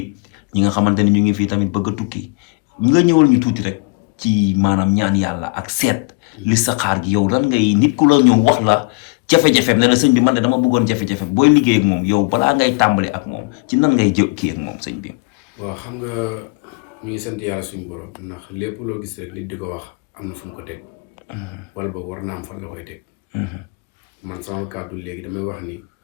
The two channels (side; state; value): right; quieter; 29.7 dB